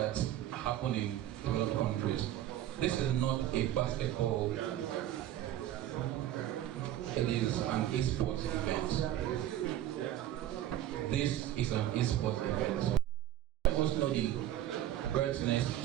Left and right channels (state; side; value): quieter; left; 12.7 dB